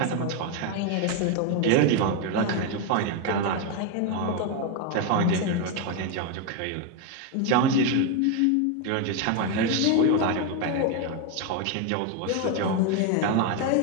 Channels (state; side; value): different; both; correlation 0.02